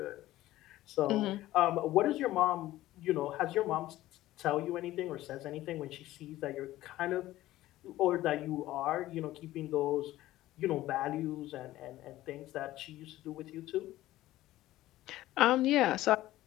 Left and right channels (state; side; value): quieter; right; 15.6 dB